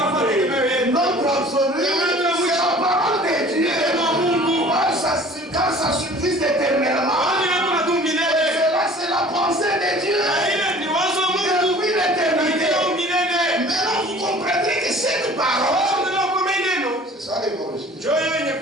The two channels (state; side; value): normal; both; correlation 0.47